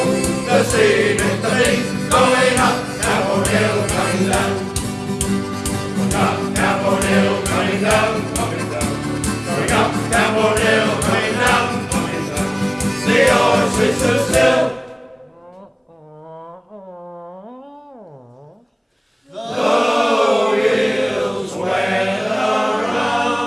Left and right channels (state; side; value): identical; both; correlation 1.00